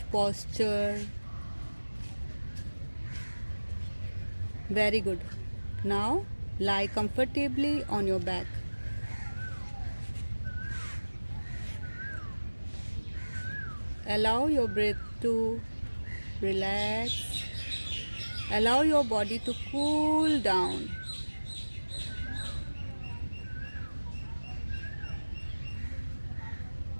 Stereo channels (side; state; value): both; inverted; correlation -1.00